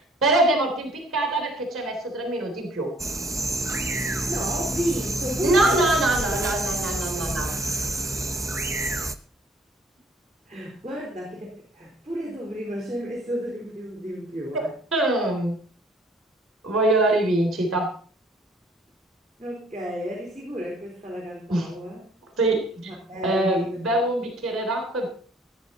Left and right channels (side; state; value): both; normal; correlation 0.59